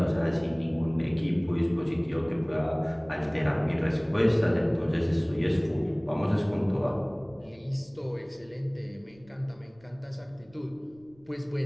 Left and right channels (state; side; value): noise; right; rumble, 28 dB below the sound